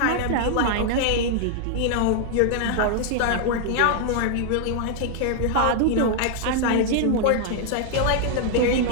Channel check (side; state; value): both; different; correlation -0.01